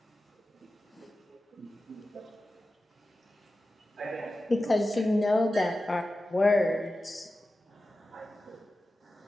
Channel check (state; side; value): normal; both; correlation 0.94